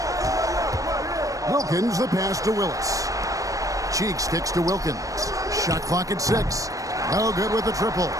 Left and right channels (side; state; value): left; late; 0.16 ms